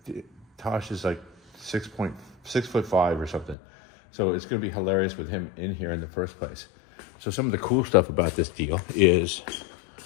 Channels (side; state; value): right; drops out; at 3.6 s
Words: Tosh is like 6'5" or something. So it's going to be hilarious with him in here in the first place. So some of the cool stuff about this deal is